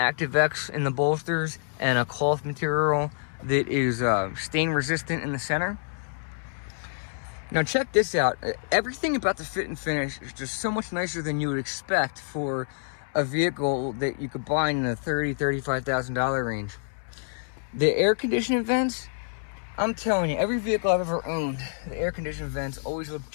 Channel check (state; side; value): silent; right; 60 dB below the other